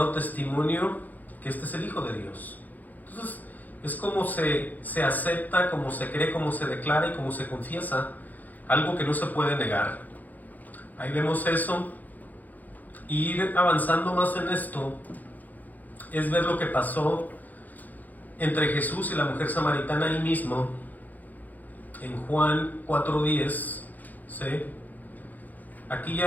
testimonio que este es el Hijo de Dios. Entonces, es como se acepta, como se cree, como se declara y como se confiesa, algo que no se puede negar. Ahí vemos eso. Y ir avanzando más en esto es ver lo que pasó entre Jesús y la mujer samaritana ahí mismo, en Juan 4:10, ¿sí? Aquí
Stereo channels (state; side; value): late; right; 0.082 ms